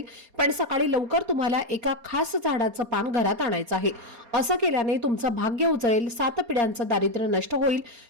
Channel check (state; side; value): late; left; 4.3 ms